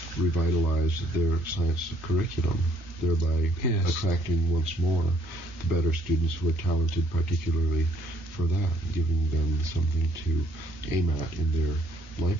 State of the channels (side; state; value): both; normal; correlation 0.65